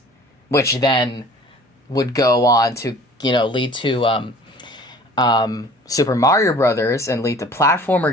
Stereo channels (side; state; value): both; normal; correlation 0.48